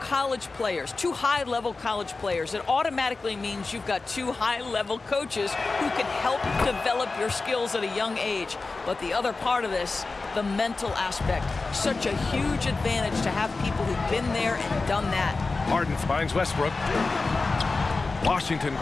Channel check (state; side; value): quieter; right; 3.8 dB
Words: players, 2 high-level college players, it automatically means you've got 2 high-level coaches who can help develop your skills at a young age. But the other part of this, the mental aspect, such a huge advantage to have people who've been there and done that. Harden finds Westbrook. Washington